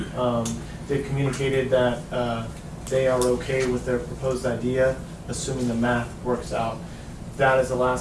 They've communicated that they are okay with their proposed idea, assuming the math works out. That is the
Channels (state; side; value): identical; both; correlation 1.00